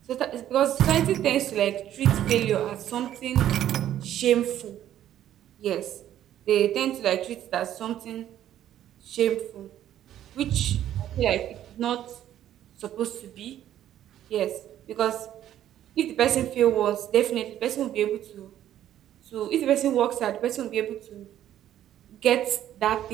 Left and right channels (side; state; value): left; quieter; 11.7 dB